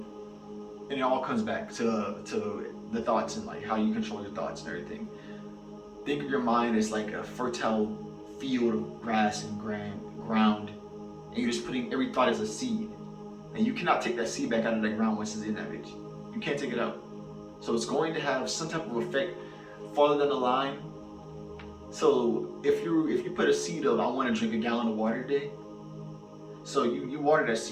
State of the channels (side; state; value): both; identical; correlation 1.00